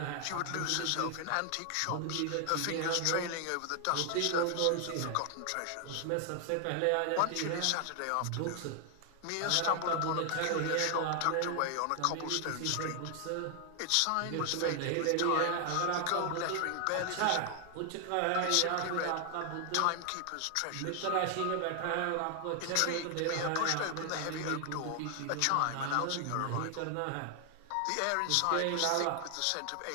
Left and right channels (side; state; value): both; different; correlation 0.00